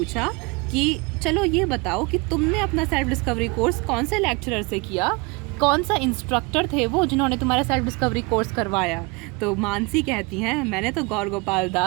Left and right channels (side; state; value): left; quieter; 27.8 dB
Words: कि चलो ये बताओ कि तुमने अपना सेल्फ डिस्कवरी कोर्स कौन से लेक्चरर से किया, कौन सा इंस्ट्रक्टर थे वो जिन्होंने तुम्हारा सेल्फ डिस्कवरी कोर्स करवाया? तो मानसी कहती हैं, मैंने तो गौर गोपाल